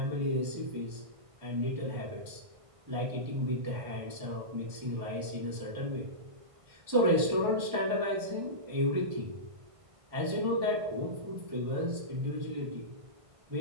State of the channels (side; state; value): left; late; 1.5 ms